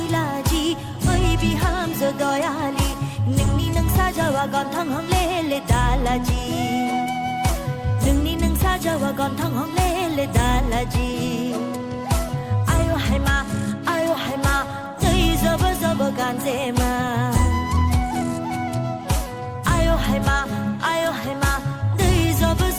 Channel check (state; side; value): identical; both; correlation 1.00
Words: oi biham zo doyali ningni nang sajawa gon thang hong le dalaji ningni nang sajawa gon thang hong le dalaji ayo haima dai zobo zobo ganzema ayo haima dai zobo